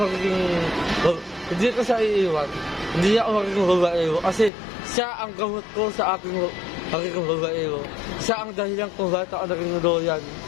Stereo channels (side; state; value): right; drops out; at 4.5 s